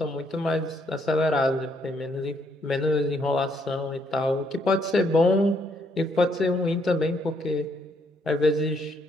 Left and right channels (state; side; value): normal; both; correlation 0.72